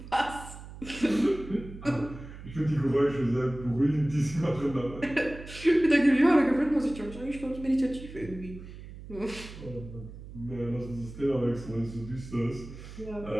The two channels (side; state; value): right; noise; hum, 14 dB below the sound